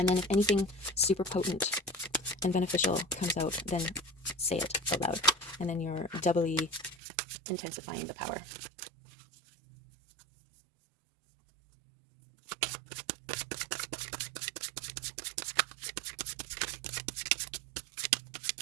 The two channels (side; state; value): left; drops out; at 7.0 s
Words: then if anything super potent and beneficial comes out, then say it out loud. And then you're doubly intensifying the power.